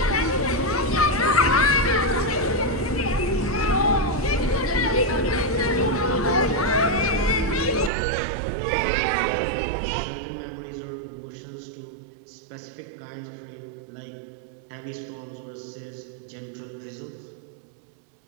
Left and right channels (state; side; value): drops out; left; at 7.9 s